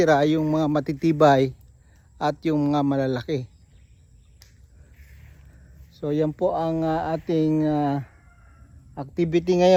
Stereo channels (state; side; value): identical; both; correlation 1.00